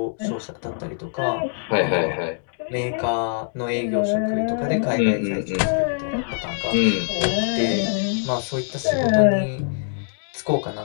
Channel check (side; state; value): right; silent; digital silence